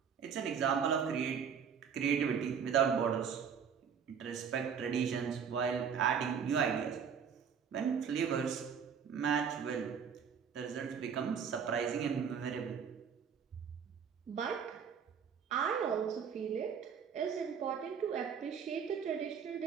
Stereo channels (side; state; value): left; quieter; 7.1 dB